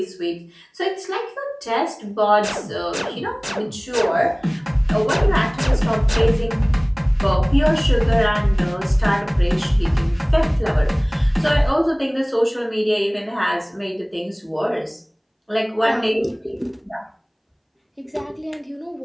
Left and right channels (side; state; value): both; identical; correlation 1.00